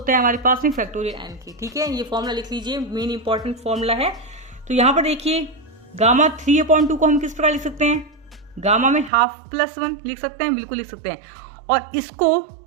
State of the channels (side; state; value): left; drops out; at 9.1 s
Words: है हमारे पास में फैक्टोरियल n की, ठीक है। ये फॉर्मूला लिख लीजिए, मेन इंपॉर्टेंट फॉर्मूला है। तो यहाँ पर देखिए गामा 3/2 को हम किस प्रकार लिख सकते हैं, गामा में हाफ प्लस 1 लिख सकते हैं, बिल्कुल लिख सकते हैं। और इसको